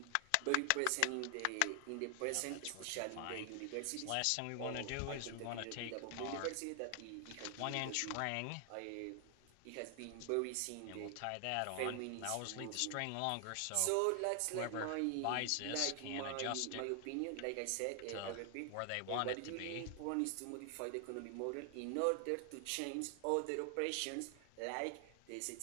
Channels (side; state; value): both; different; correlation 0.00